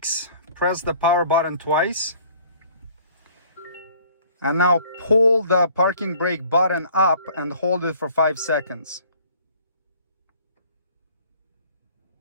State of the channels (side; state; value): both; inverted; correlation -0.54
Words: press the power button twice. And now pull the parking brake button up and hold it for 5 seconds.